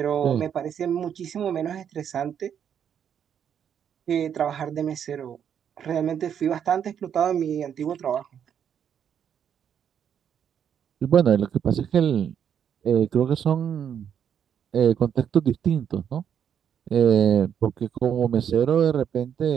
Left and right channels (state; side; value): quieter; left; 8.5 dB